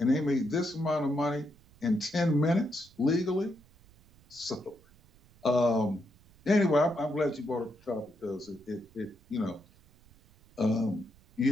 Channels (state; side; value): noise; right; rumble, 28 dB below the sound